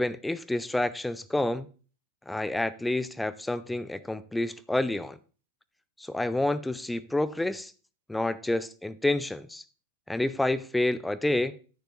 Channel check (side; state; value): both; normal; correlation 0.96